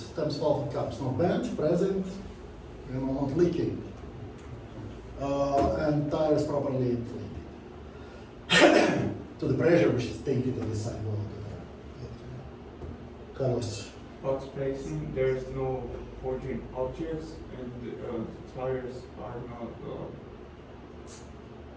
stems, valve and caps? No bent, present, not leaking. And tires properly inflated. To the pressure which is taken to the sidewall of the car. Carlos. Box placing, there's no forging objects, and tires are not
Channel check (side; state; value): both; identical; correlation 1.00